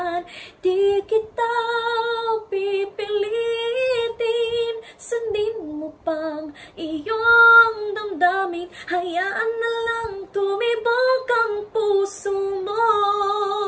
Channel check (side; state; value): both; identical; correlation 1.00